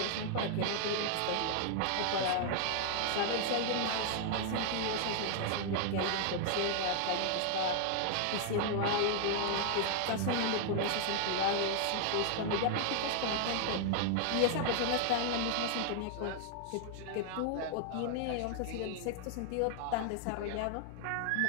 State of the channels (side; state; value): both; different; correlation 0.00